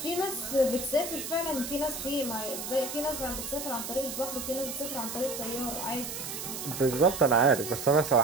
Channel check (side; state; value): right; noise; hiss, 7 dB below the sound